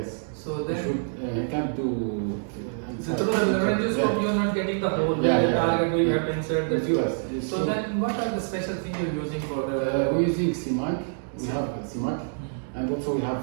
So then he can't do. So through the laryngoscope, you are not getting the whole target. You have to insert the tube. So then, what are the special things you are using for the? We're using CMAC. We have CMAC. And also we have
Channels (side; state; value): left; silent; digital silence